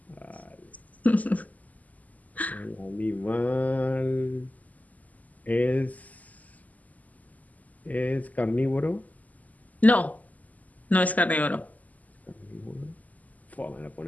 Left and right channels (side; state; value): right; late; 0.077 ms